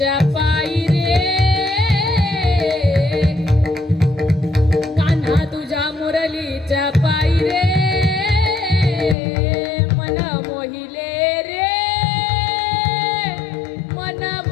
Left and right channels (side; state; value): right; drops out; at 9.2 s